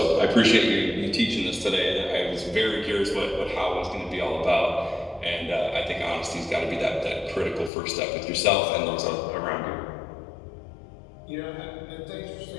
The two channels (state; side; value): drops out; right; at 7.7 s